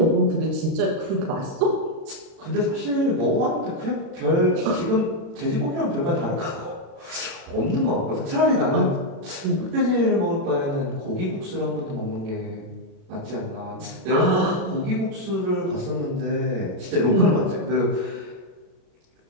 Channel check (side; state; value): left; late; 36 ms